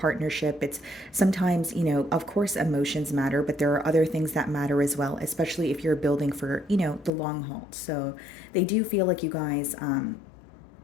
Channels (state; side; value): drops out; right; at 7.1 s